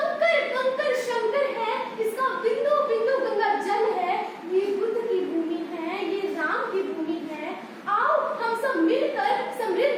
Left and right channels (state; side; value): identical; both; correlation 1.00